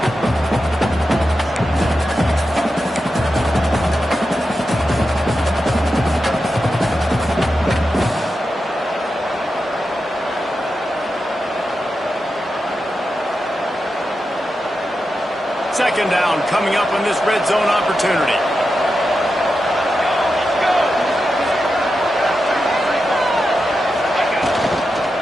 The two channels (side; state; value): both; normal; correlation 0.89